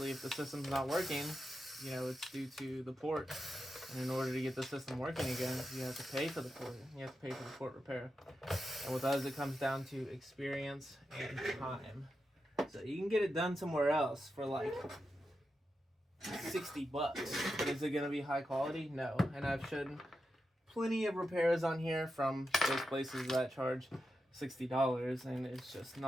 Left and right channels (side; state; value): both; normal; correlation 0.88